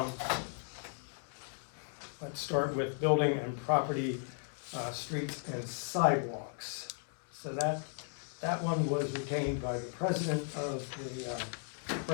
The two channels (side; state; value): right; silent; 54 dB below the other